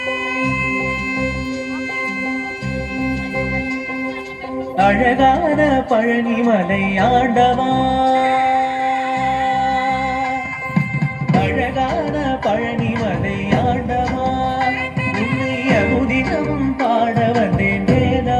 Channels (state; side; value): identical; both; correlation 1.00